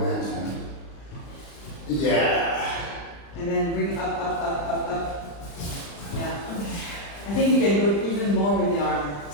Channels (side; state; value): right; late; 35 ms